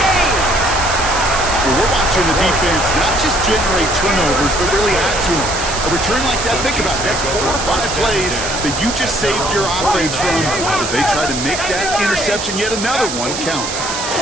Well, we're watching the defense not just generate turnovers, but really add to them. A return like that, think about it, that's 4 or 5 plays that you just saved your offense from as they try to make that interception, yet another one, count.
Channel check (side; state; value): right; noise; hiss, 5 dB below the sound